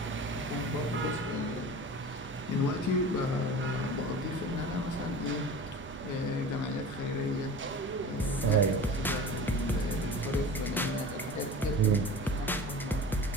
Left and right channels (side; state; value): both; normal; correlation 0.36